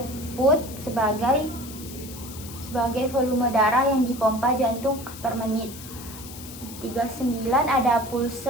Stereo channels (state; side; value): noise; left; hiss, 14 dB below the sound